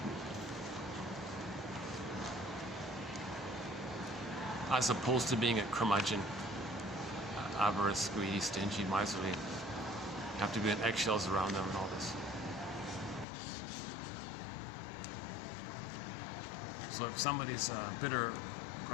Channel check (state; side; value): drops out; right; at 13.2 s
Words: As opposed to being a curmudgeon, avarice, greedy, stingy, miserly. You have to be in eggshells around them and all this. So if somebody's bitter,